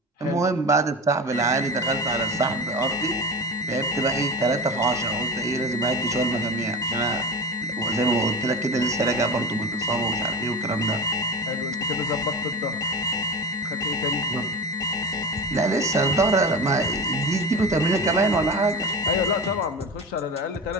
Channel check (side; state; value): both; normal; correlation 0.27